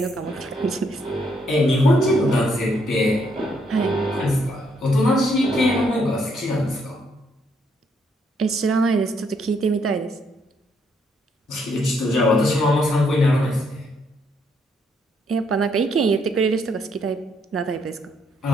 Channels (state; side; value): normal; both; correlation 0.72